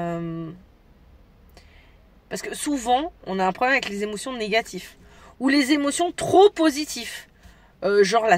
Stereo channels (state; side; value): identical; both; correlation 1.00